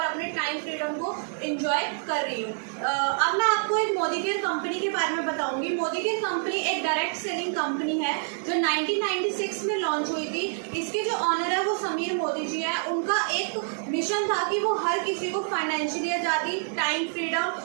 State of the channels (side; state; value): left; silent; 60 dB below the other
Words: अपने टाइम फ्रीडम को इंजॉय कर रही हूँ। अब मैं आपको एक मोदी केयर कंपनी के बारे में बताऊंगी। मोदी केयर कंपनी एक डायरेक्ट सेलिंग कंपनी है जो 1996 में लॉन्च हुई थी। इसके जो ऑनर है वो समीर मोदी जी है। उनका एक मिशन था कि वो हर किसी को फाइनेंशियली आज़ादी, टाइम